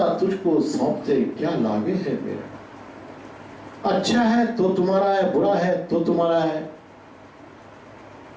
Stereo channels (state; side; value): identical; both; correlation 1.00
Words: तुझको सौंपते क्या लागे है मेरा। अच्छा है तो तुम्हारा है, बुरा है तो तुम्हारा है।